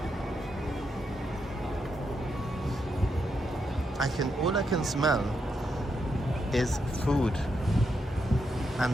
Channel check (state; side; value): normal; both; correlation 0.82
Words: All I can smell is food,